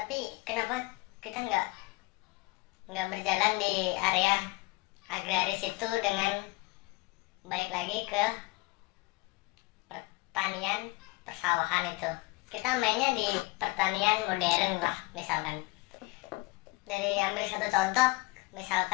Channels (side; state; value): right; quieter; 23.3 dB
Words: kenapa kita nggak berjalan di area agraris itu dengan balik lagi ke pertanian persawahan itu? Kita mainnya di pertanian modern lah, misalkan. Dari ambil satu contoh,